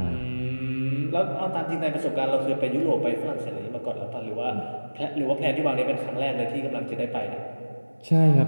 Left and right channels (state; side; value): inverted; both; correlation -1.00